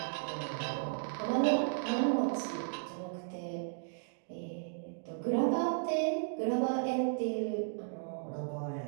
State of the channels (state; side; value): silent; left; digital silence